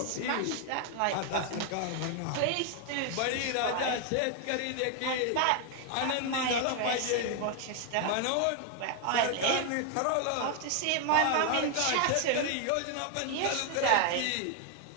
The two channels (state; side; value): different; both; correlation 0.00